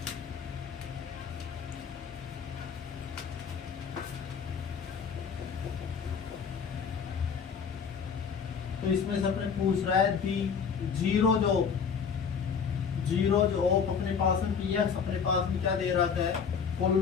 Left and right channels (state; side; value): quieter; right; 6.5 dB